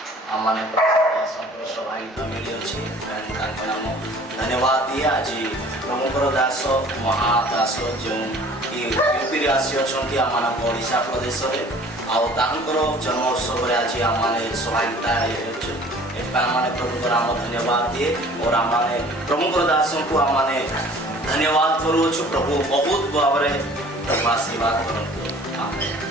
ଆମମାନେ ସଭାଗୀତ ମିଳିଅଛି, ତାଙ୍କ ନାମ ଧନ୍ୟବାଦ ଦିଏ। ଆଜି ପ୍ରଭୁଙ୍କର ଦାସ ମହାଦାସ ଯେଉଁ ୟୁପିରେ ଆସି ଅଛନ୍ତି ଆମମାନଙ୍କ ଓଡ଼ିଶା ପ୍ରଦେଶରେ, ଆଉ ତାଙ୍କର ଜନ୍ମ ଉତ୍ସବରେ ଆଜି ଆମମାନେ ସଭାଗୀତା ହେଉଛୁ। ଏଥିପାଇଁ ଆମମାନେ ପ୍ରଭୁଙ୍କ ନାମ ଧନ୍ୟବାଦ ଦିଏ ଓ ଆମମାନେ ପ୍ରଭୁଙ୍କର ଦାସଙ୍କୁ ଆମମାନେ ଧନ୍ୟବାଦ କରୁଅଛୁ। ପ୍ରଭୁ ବହୁତ ଭାବରେ ଆଶୀର୍ବାଦ କରନ୍ତୁ।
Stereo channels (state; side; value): normal; both; correlation 0.50